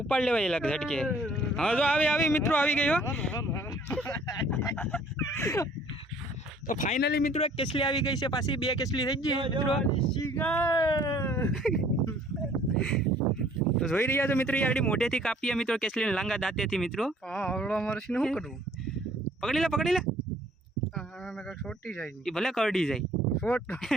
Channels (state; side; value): normal; both; correlation 0.57